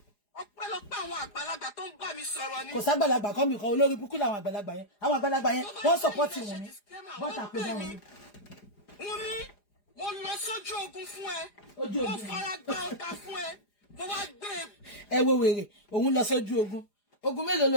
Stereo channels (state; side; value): late; right; 4.9 ms